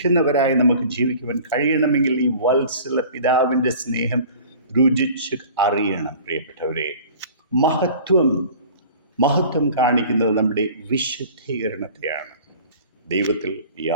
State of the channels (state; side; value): inverted; both; correlation -0.44